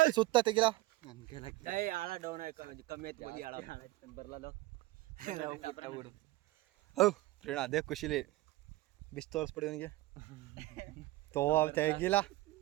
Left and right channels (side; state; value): left; quieter; 18.9 dB